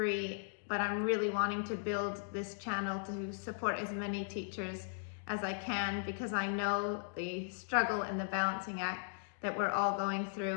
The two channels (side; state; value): right; silent; digital silence